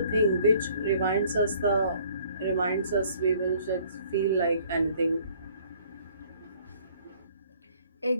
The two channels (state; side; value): inverted; both; correlation -0.59